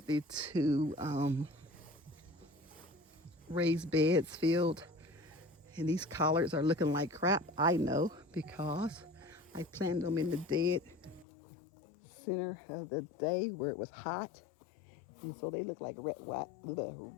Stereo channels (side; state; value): right; drops out; at 11.2 s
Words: the 2 raised beds filled, and these collards are looking like crap. I know, because I planted them in the dead center of the day where it was hot, and so they look like wet